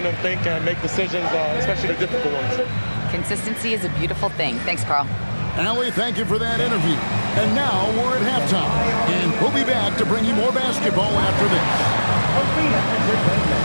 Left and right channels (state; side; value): inverted; both; correlation -1.00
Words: them think and make decisions, especially the difficult ones. Consistency is a beautiful thing. Thanks, Carl. Allie, thank you for that interview. And now we're at halftime. And we'll be back to bring you more basketball after this.